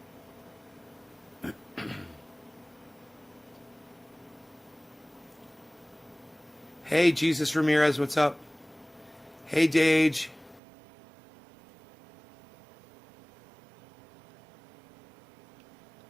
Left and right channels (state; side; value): drops out; left; at 10.6 s